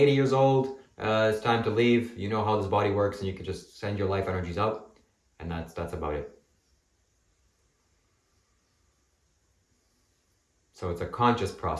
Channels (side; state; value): both; identical; correlation 1.00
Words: years old, it's time to leave. You know how this body works and you can just send your life energies out, and that's about it. So it's a conscious